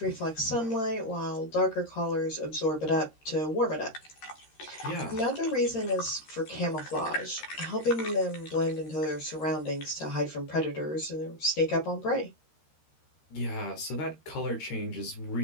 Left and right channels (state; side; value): late; right; 13 ms